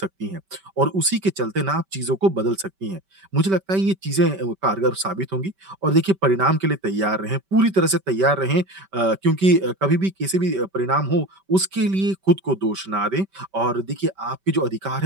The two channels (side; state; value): left; late; 5.2 ms